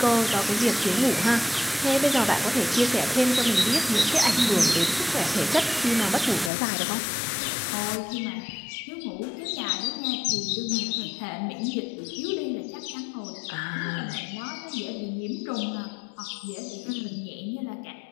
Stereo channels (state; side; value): drops out; right; at 6.5 s